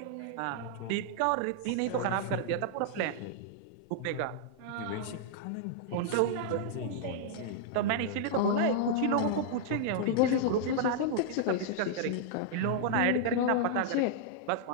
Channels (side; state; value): both; different; correlation -0.01